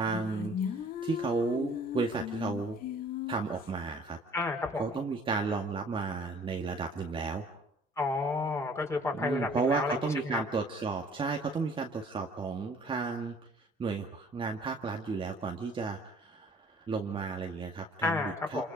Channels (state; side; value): normal; both; correlation 0.53